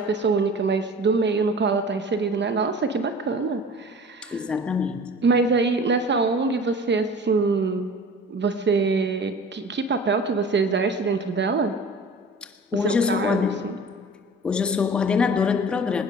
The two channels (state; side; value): normal; both; correlation 0.42